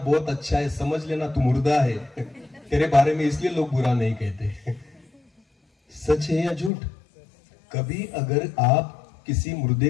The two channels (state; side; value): drops out; right; at 6.7 s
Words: अच्छा है, समझ लेना तू मुर्दा है तेरे बारे में, इसलिए लोग बुरा नहीं कहते। सच है या झूठ? कभी अगर आप किसी मुर्दे